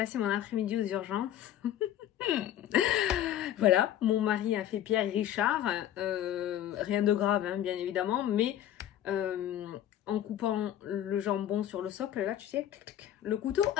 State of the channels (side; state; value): right; quieter; 11.5 dB